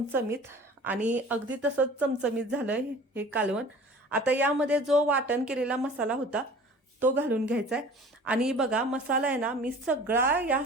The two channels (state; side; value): normal; both; correlation 0.44